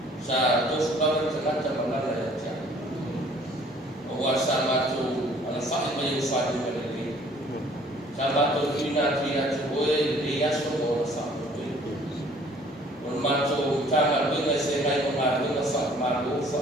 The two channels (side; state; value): both; normal; correlation 0.56